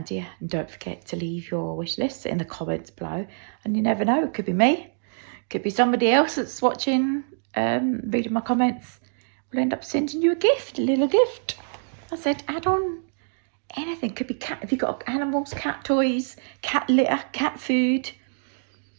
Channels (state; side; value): silent; left; digital silence